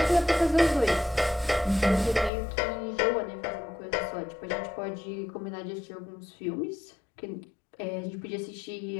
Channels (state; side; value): drops out; right; at 2.3 s